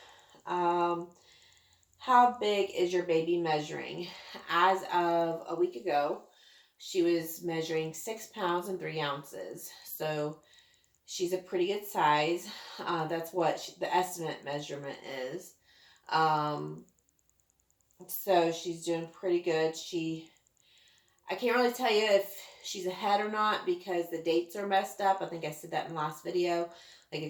How big is your baby measuring? As of a week ago, she was measuring 6 pounds and 3 ounces. So she's a pretty good size. That's what the estimate measurement is. Um, so she's doing pretty good. I can't really tell you if she's ahead or not because the dates are messed up. I think I said that in the last video. Like,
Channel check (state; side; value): identical; both; correlation 1.00